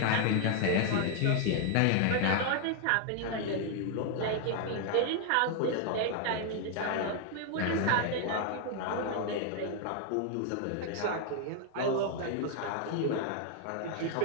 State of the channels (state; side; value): different; both; correlation 0.00